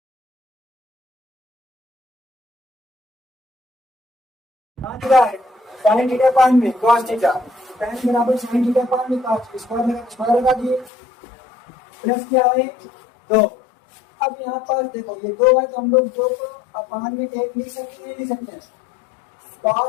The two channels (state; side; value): drops out; right; at 10.9 s